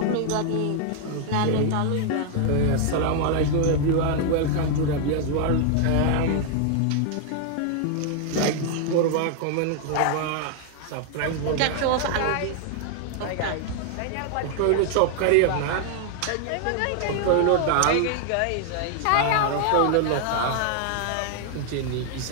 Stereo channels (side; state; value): both; different; correlation 0.00